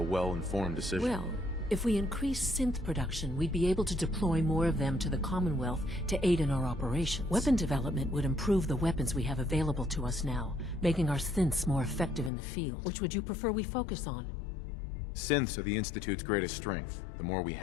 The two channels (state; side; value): drops out; right; at 12.3 s